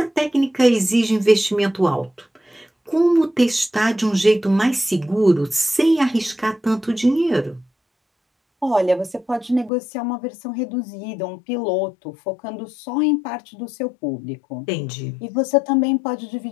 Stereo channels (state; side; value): drops out; right; at 9.7 s